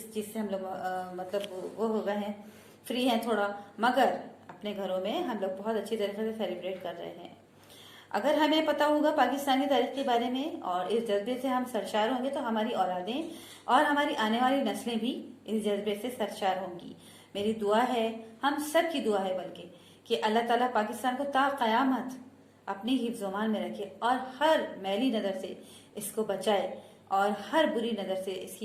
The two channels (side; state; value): both; identical; correlation 1.00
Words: चीज़ से हम लोग मतलब वो हो गए हैं, फ्री हैं थोड़ा, मगर अपने घरों में हम लोग बहुत अच्छी तरीके से सेलिब्रेट कर रहे हैं। अगर हमें पता होगा पाकिस्तान की तारीख के बारे में और इस जज्बे से हम सरशार होंगे तो हमारी औलादें और हमारी आने वाली नस्लें भी इस जज्बे से सरशार होंगी। मेरी दुआ है, हम सब की दुआ है बल्कि, कि अल्लाह ताला पाकिस्तान को ता क़यामत अपनी हिफ्ज़-ओ-मान में रखे और हर मैली नज़र से इसको बचाए और हर बुरी नज़र से इसकी